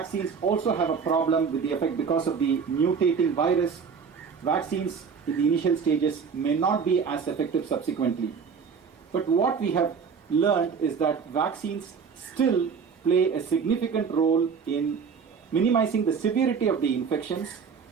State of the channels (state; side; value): quieter; left; 6.0 dB